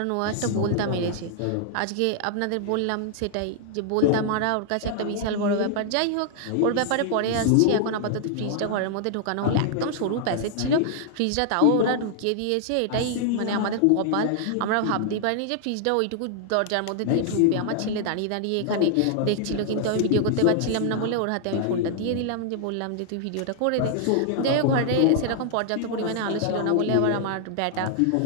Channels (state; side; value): different; both; correlation -0.01